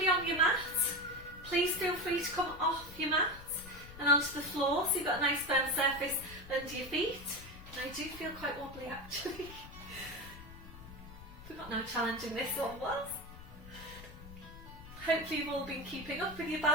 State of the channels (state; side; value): noise; left; rumble, 16 dB below the sound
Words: on your mat, please feel free to come off your mat and onto the floor so you've got a nice firm surface under your feet. And I do feel quite wobbly actually. Forgot how challenging this one was. Hopefully you've all been keeping up with your